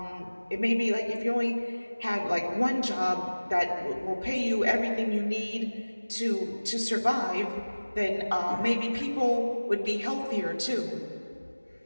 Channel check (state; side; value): inverted; both; correlation -1.00